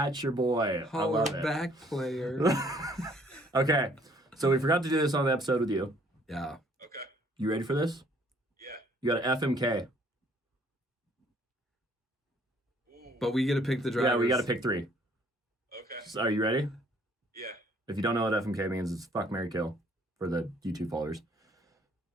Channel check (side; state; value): both; normal; correlation 0.61